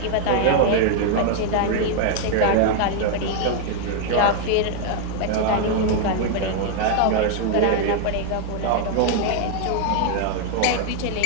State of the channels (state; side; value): different; both; correlation 0.00